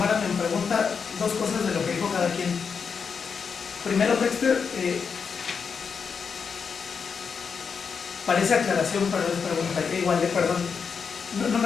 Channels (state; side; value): quieter; right; 6.0 dB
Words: en pregunta, dos cosas de lo que dijo cada quien. Primero, Dexter, parece aclaración, pero es pregunta, igual, perdón, no me